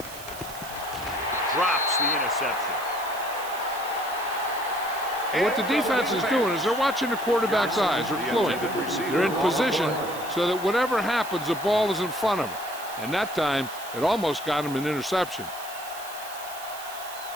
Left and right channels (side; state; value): right; noise; hiss, 14 dB below the sound